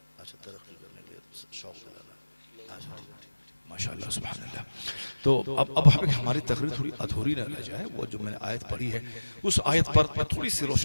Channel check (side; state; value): both; inverted; correlation -1.00